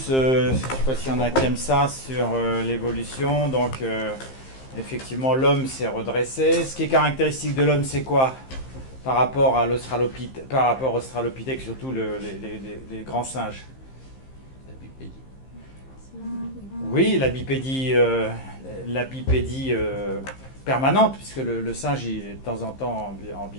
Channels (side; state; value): right; late; 15 ms